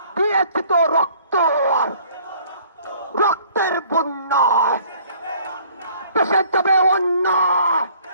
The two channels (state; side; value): inverted; both; correlation -0.56